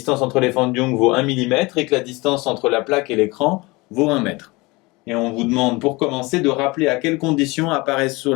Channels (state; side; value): quieter; right; 23.9 dB